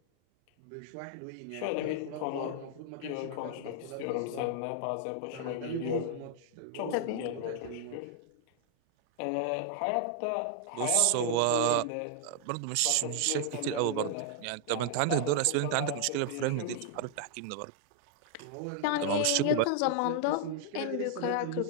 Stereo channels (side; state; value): both; different; correlation 0.00